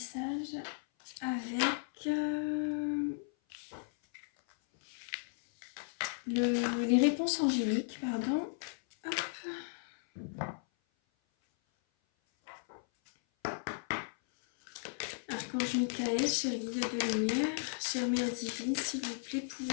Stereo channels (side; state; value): right; silent; 54 dB below the other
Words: avec les réponses angéliques, pardon. Hop. Archange Michael, cher guide de lumière, chère mère divine, s'il vous plaît,